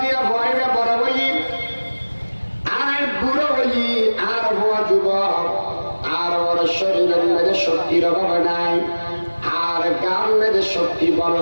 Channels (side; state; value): both; inverted; correlation -1.00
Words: দিয়া ভয়বে বড় হই আর বুড়ো হই আর হওয়া যুবক আর ওর শরীরের মধ্যে শক্তির অভাব নাই আর গান মধ্যে শক্তি বড়